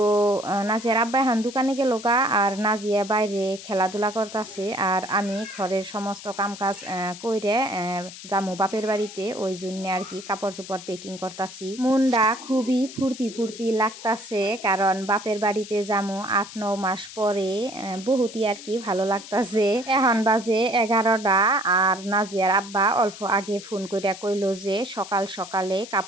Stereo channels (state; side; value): noise; left; hiss, 14 dB below the sound